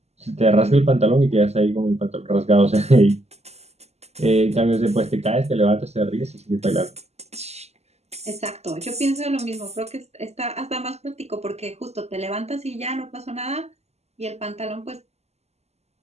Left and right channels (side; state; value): left; late; 0.31 ms